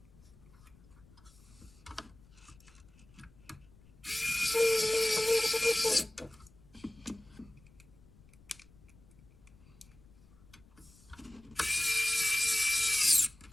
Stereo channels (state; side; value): noise; left; rumble, 25 dB below the sound